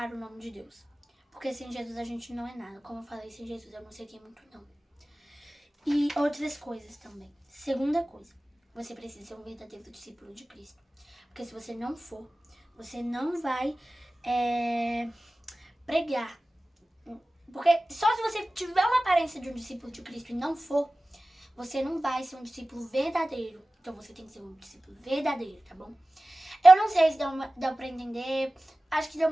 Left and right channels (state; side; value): normal; both; correlation 0.96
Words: o nome de Deus. Porque sem Jesus a gente não é nada. Como eu falei, sem Jesus eu não seria muito não. E outras coisas também. Segunda coisa, você precisa ser um verdadeiro discípulo de Cristo. Porque se você não for, você não vai pregar. Porque só se você tiver uma aparência de um discípulo de Cristo e não for, você não vai ser um discípulo verdadeiro. Então você tem que ser um discípulo verdadeiro, tá bom? Eu não sei se deu pra entender. Acho que deu